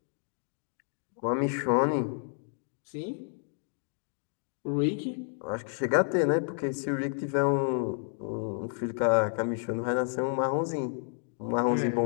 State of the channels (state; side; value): silent; right; 57 dB below the other